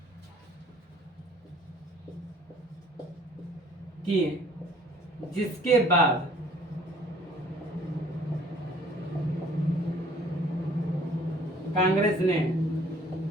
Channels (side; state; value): both; normal; correlation 0.56